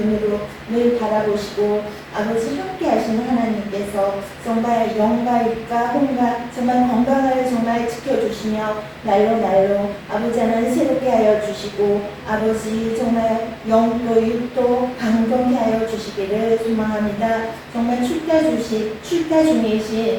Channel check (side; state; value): both; identical; correlation 1.00